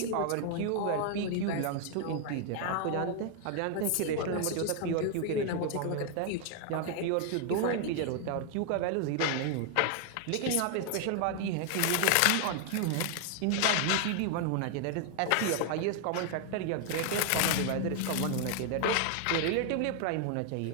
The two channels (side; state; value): both; different; correlation 0.00